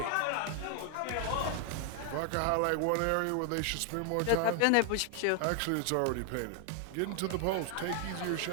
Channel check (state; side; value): different; both; correlation 0.00